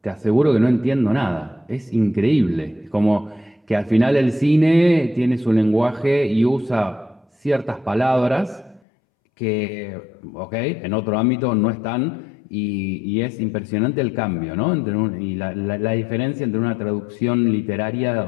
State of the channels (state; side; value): drops out; right; at 8.8 s